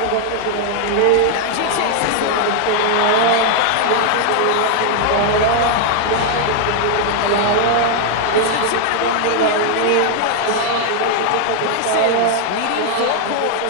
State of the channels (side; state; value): both; different; correlation 0.00